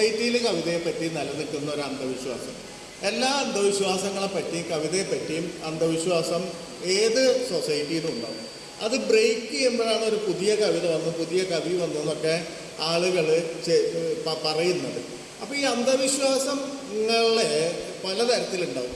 കവിതയെപ്പറ്റി നിലനിൽക്കുന്ന ഒരു അന്ധവിശ്വാസം. എല്ലാ അന്ധവിശ്വാസങ്ങളെ പറ്റിയും കവിതയെപ്പറ്റിയും അന്ധവിശ്വാസം ഏത് സൊസൈറ്റിയിലും ഉണ്ടാവും. അത് ബ്രേക്ക് ചെയ്യുമ്പോഴാണ് ഒരു പുതിയ കവിത വന്നു, പുതിയ കവി വന്നു എന്നൊക്കെ ആളുകൾ പറയുന്നത്. അപ്പോൾ ഈ അന്ധവിശ്വാസങ്ങളെ പലതരത്തിലുണ്ടാവും.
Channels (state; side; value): identical; both; correlation 1.00